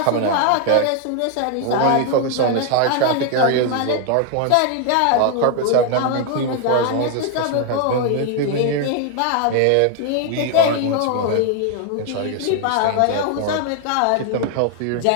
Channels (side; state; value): both; different; correlation 0.00